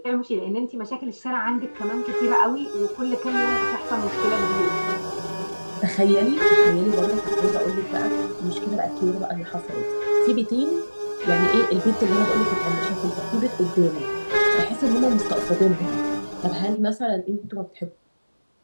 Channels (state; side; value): inverted; both; correlation -1.00